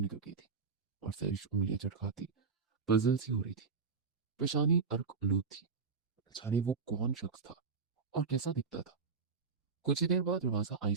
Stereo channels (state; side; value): quieter; left; 5.1 dB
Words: गई थी और सैरिश उंगलियां चटकाती पजल सी हो रही थी। पेशानी अर्क आलूद थी। जाने वो कौन शख्स था और कैसा दिखता था। कुछ ही देर बाद दरवाजा